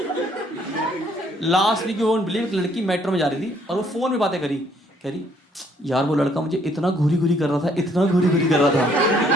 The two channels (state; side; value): normal; both; correlation 0.65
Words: Last week you won't believe, लड़की मेट्रो में जा रही थी और वो फोन में बातें करी, कह रही यार वो लड़का मुझे इतना घूरी घूरी कर रहा था, इतना घूरी घूरी कर रहा था।